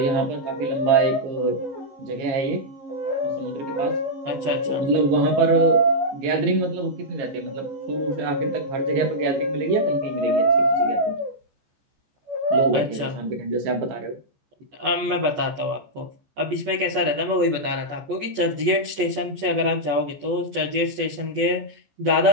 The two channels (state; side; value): late; left; 14 ms